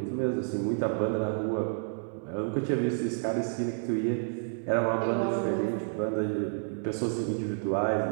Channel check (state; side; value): silent; left; 58 dB below the other